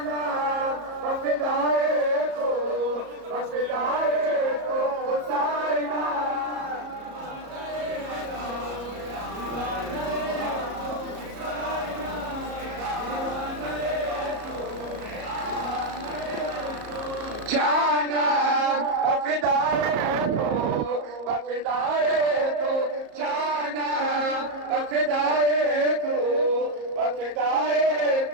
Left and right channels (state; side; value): late; left; 34 ms